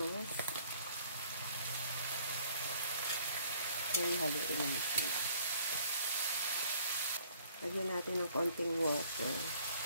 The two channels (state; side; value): inverted; both; correlation -0.59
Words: Then, haluin natin. Lagyan natin ng konting water.